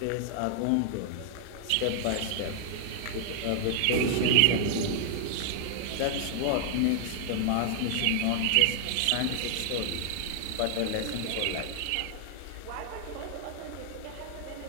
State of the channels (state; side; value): different; both; correlation -0.01